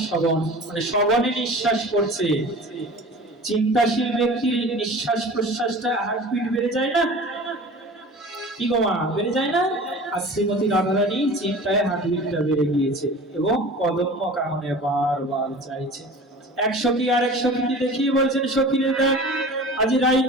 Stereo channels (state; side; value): normal; both; correlation 0.39